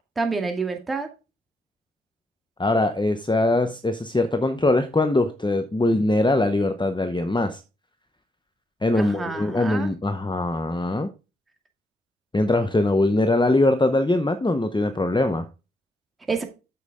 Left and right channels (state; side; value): normal; both; correlation 0.78